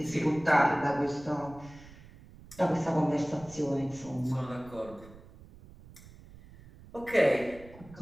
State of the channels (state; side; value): noise; right; rumble, 20 dB below the sound